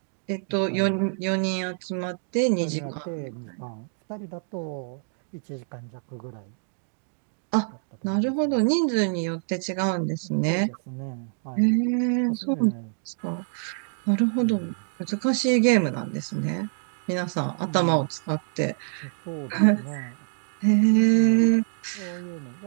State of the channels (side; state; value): left; silent; digital silence